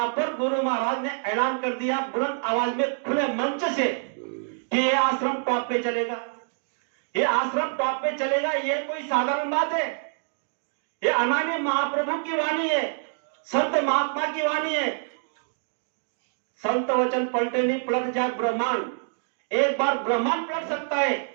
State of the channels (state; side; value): silent; left; digital silence